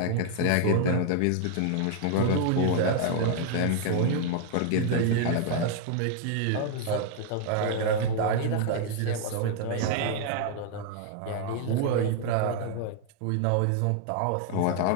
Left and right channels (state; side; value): different; both; correlation 0.00